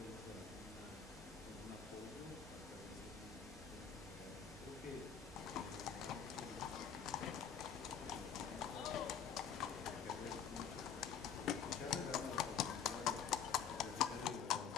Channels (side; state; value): right; quieter; 7.5 dB